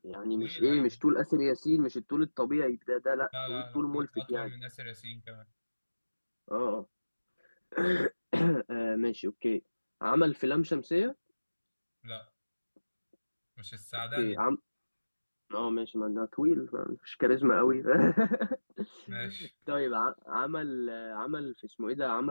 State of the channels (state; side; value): inverted; both; correlation -1.00